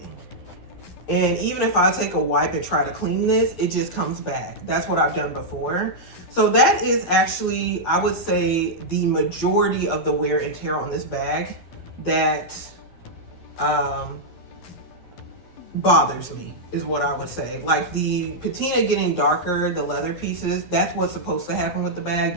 And even if I take a wipe and try to clean this, it just comes back. That's what I've done before. So that is actually, I would say, the majority of the wear and tear on this bag that bothers me, is what I would say. Like the patina getting darker, the leather pieces, that's what's supposed to happen with the bag.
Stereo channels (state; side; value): late; right; 12 ms